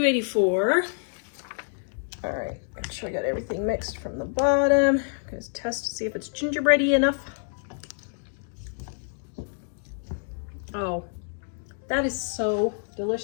All right, make sure I got everything mixed from the bottom. I'm gonna test to see if it's gingerbready enough. Oh, that is so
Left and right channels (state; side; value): silent; right; digital silence